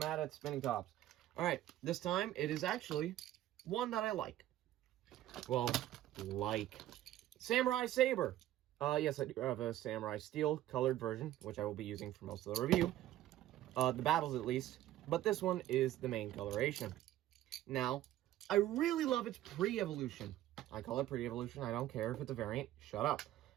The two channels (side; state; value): left; quieter; 13.7 dB